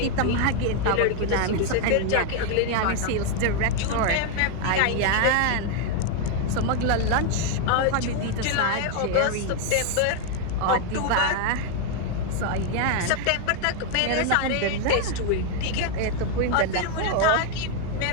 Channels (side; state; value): both; different; correlation 0.00